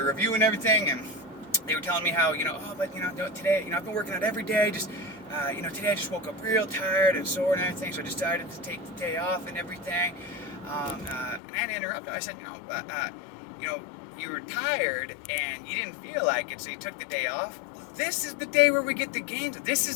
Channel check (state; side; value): drops out; right; at 11.4 s